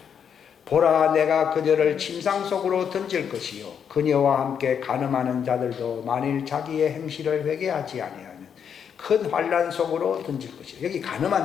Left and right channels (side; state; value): right; quieter; 7.7 dB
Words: 보라, 내가 그녀를 침상 속으로 던질 것이요 그녀와 함께 간음하는 자들도 만일 자기의 행실을 회개하지 아니하면 큰 환난 속으로 던질 것이요. 여기